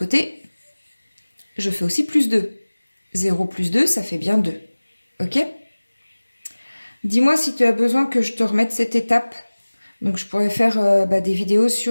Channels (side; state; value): both; inverted; correlation -1.00